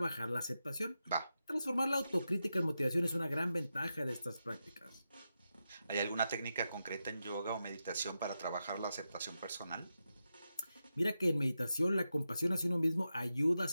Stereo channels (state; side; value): inverted; both; correlation -0.88